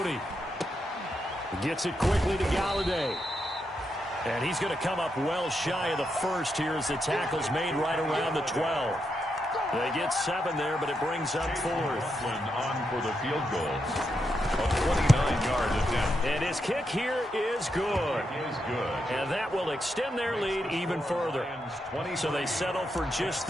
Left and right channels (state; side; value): normal; both; correlation 0.83